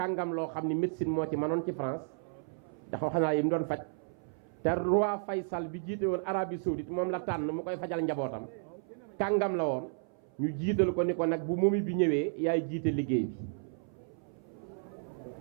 loo xam ni médecine moo ci manoon ci France ndax wax naa yi mu doon faj te roi Faysal bi jiite woon Arabie Saoudite moom la tànn mu koy fajal njabootam kàngam la woon ñu jiital ko ni ko nag bu momi bi ñëwee yaay jiite liggéey bi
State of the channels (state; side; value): silent; left; 56 dB below the other